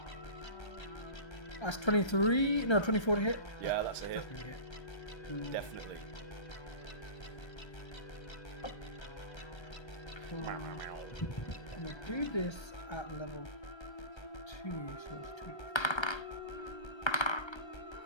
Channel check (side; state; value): right; late; 1.3 ms